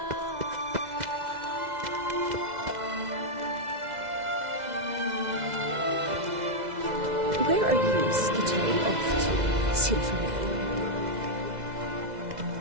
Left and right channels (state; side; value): late; left; 2.0 ms